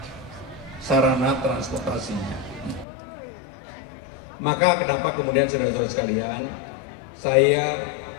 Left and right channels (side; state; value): right; drops out; at 2.9 s